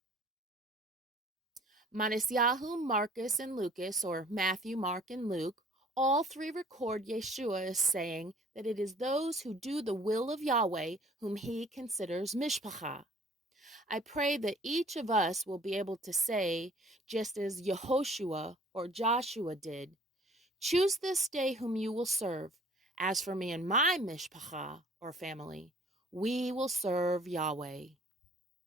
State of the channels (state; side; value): normal; both; correlation 0.53